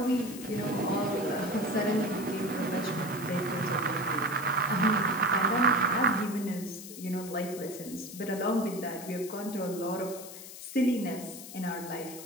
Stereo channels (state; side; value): noise; left; hiss, 13 dB below the sound